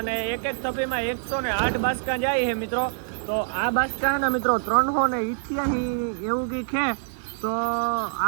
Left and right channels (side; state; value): left; silent; digital silence